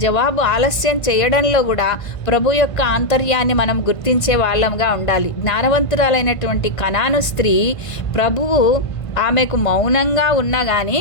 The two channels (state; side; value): late; right; 1.5 ms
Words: జవాబు ఆలస్యం చేయడంలో కూడా ప్రభు యొక్క ఆంతర్యాన్ని మనం గుర్తించే వాళ్ళంగా ఉండాలి. జ్ఞానవంతురాలైనటువంటి కనాను స్త్రీ ప్రభువు ఆమెకు మౌనంగా ఉన్నా కానీ